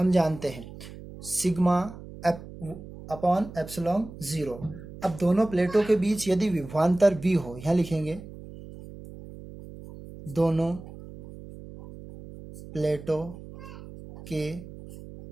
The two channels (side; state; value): right; noise; hum, 15 dB below the sound